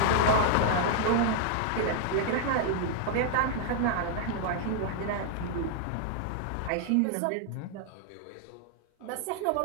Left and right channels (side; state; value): both; different; correlation 0.00